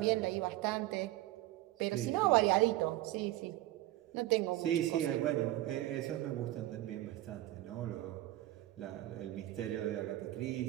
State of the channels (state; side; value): quieter; left; 15.9 dB